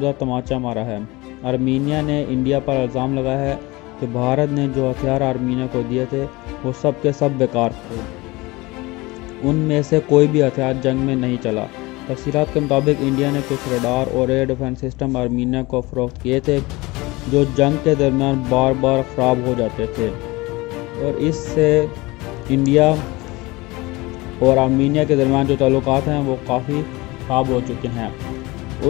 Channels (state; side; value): quieter; right; 22.3 dB